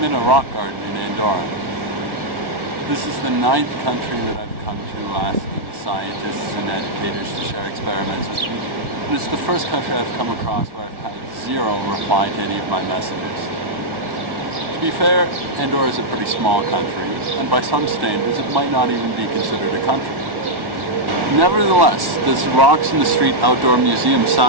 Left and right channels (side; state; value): left; late; 1.5 ms